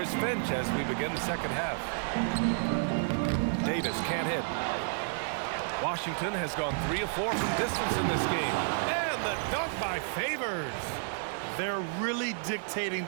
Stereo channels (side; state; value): left; silent; digital silence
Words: Finch as we begin the second half. Davis can't hit. Washington has gone 3 of 4 from distance in this game. And the dunk by Favors. They're really dictating